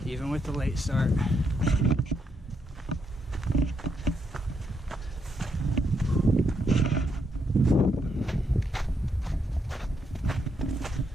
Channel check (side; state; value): both; normal; correlation 0.78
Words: even with the late start.